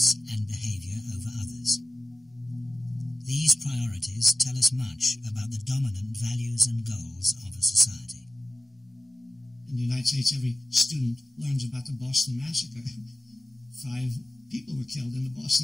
and behavior over others. These priorities tell us much about the dominant values and goals of a society. In the United States, every student learns about the Boston Massacre. 5 people were killed in the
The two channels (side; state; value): both; normal; correlation 0.96